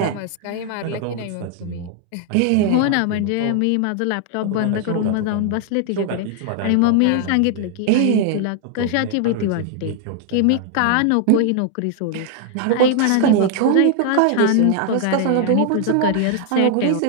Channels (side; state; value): both; different; correlation 0.00